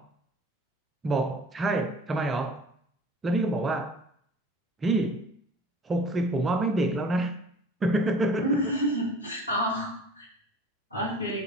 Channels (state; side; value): normal; both; correlation 0.46